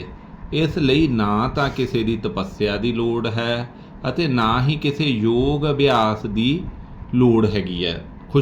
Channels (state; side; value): identical; both; correlation 1.00